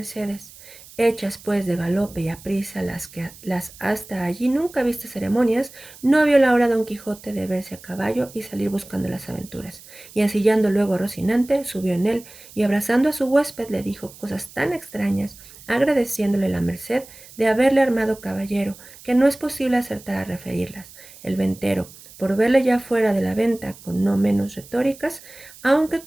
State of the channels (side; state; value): right; noise; hiss, 20 dB below the sound